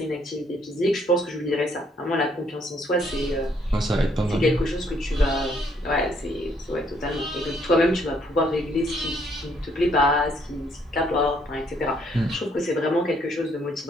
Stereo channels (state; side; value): normal; both; correlation 0.68